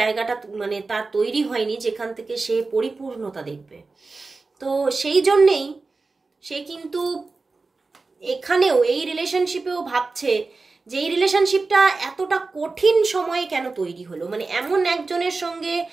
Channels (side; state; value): left; quieter; 3.9 dB